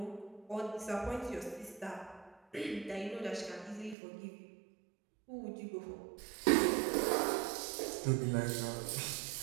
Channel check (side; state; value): left; drops out; at 4.0 s